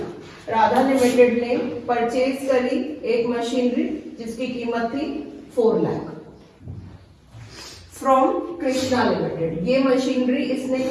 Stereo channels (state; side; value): identical; both; correlation 1.00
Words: Radha limited ने परचेज करी एक मशीनरी जिसकी कीमत थी 4 लाख फ्रॉम कृष्णा लिमिटेड। ये मशीनरी इसने